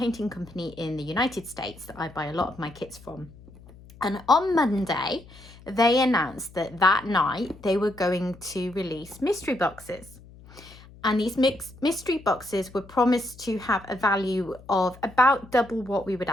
company in the United States that I buy a lot of my kits from. And on Monday, they announced that that night they were going to release mystery boxes. And these mystery boxes were promised to have a value of about double what we would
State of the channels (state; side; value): noise; left; hum, 21 dB below the sound